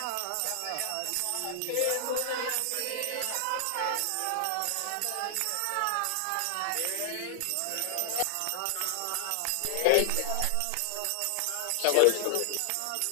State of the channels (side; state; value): both; different; correlation 0.00